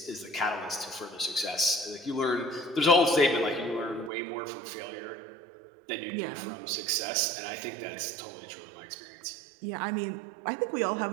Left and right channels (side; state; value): left; drops out; at 4.1 s